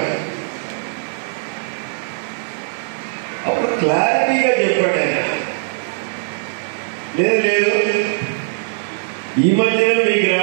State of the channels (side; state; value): left; silent; 66 dB below the other